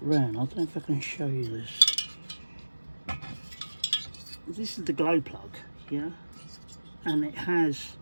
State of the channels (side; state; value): both; inverted; correlation -1.00